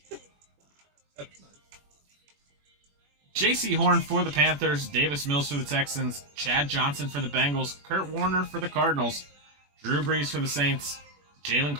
That's nice. J.C. Horn for the Panthers, Davis Mills for the Texans, Chad Johnson for the Bengals, Kurt Warner for the Cardinals, Drew Brees for the Saints, Jalen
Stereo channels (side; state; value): left; late; 21 ms